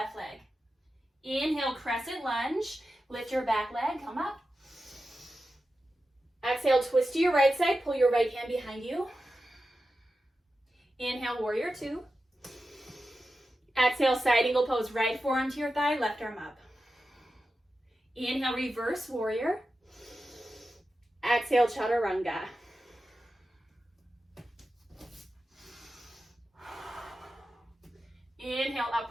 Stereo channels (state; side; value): normal; both; correlation 0.92